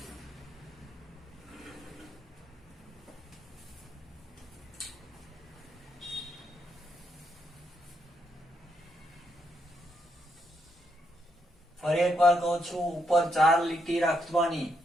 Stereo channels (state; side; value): normal; both; correlation 0.78